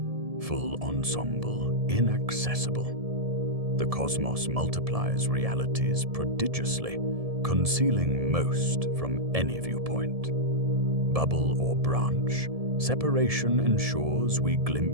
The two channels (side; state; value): left; late; 1.7 ms